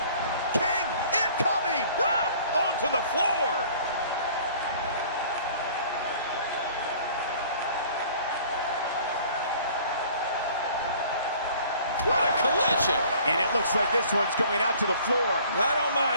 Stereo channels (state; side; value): inverted; both; correlation -0.52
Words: To the floor. What a collision. And it looks like this one's going out to the floor. I don't